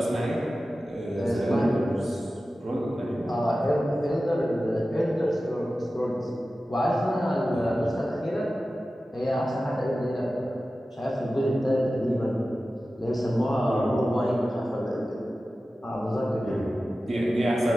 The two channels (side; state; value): both; normal; correlation 0.95